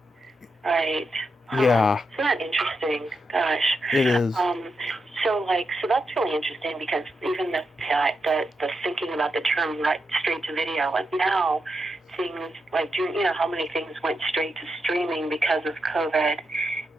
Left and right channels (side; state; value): both; normal; correlation 0.85